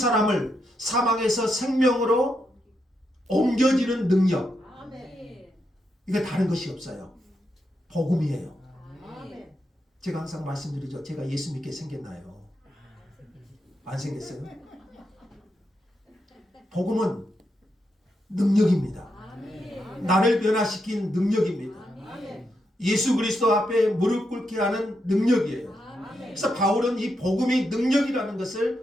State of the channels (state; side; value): normal; both; correlation 0.83